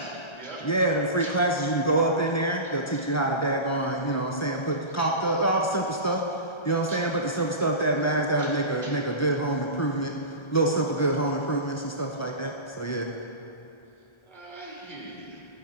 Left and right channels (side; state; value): right; late; 1.3 ms